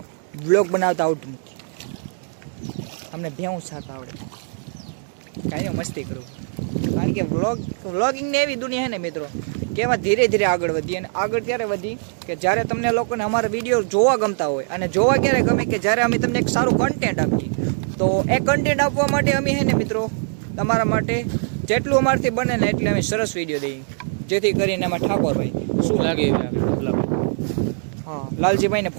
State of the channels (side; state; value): left; silent; digital silence